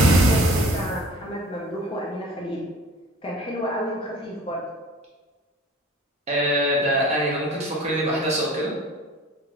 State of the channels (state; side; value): normal; both; correlation 0.46